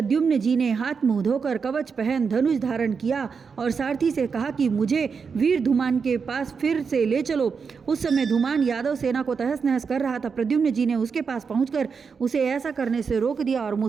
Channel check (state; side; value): quieter; left; 5.7 dB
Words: जी ने हाथ मुंह धोकर कवच पहन धनुष धारण किया और सारथी से कहा कि मुझे वीर धूमान के पास फिर से ले चलो। उस समय धूमान यादव सेना को तहस नहस कर रहा था। प्रद्युम्न जी ने उसके पास पहुंचकर उसे ऐसा करने से रोक दिया और